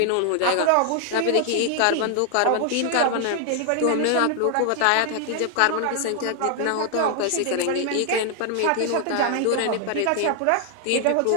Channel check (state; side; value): different; both; correlation 0.00